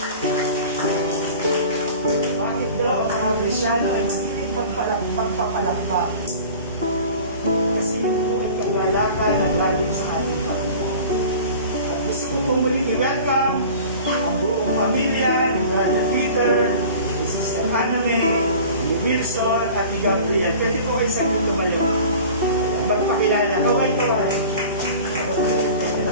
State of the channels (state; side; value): inverted; both; correlation -0.42